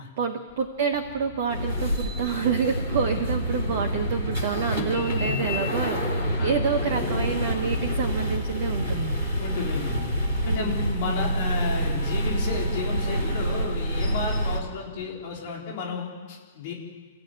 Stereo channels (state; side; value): inverted; both; correlation -0.54